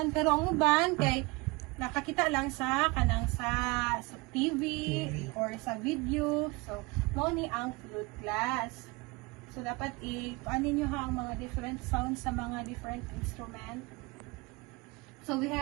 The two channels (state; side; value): quieter; left; 24.9 dB